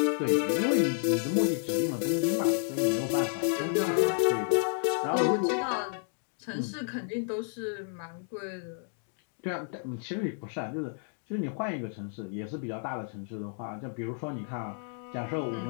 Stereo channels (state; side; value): silent; right; 57 dB below the other